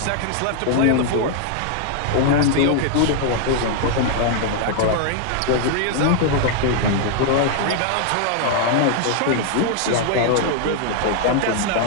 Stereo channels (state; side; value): different; both; correlation 0.00